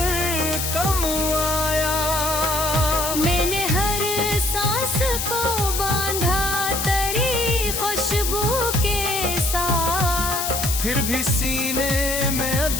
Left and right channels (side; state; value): left; noise; hiss, 2 dB below the sound